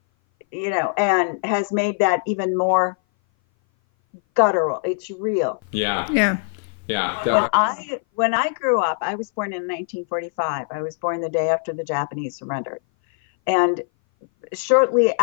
and has made that even more guttural. It's real. Yeah. When I grew up, I was born in 1945. I was born the day after the Japanese surrendered. And shortly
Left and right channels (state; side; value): silent; right; 58 dB below the other